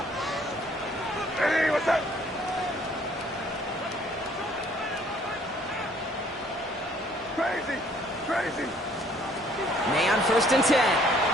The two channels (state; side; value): normal; both; correlation 0.60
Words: Hey, what's up? Crazy, crazy. May on 1st and 10.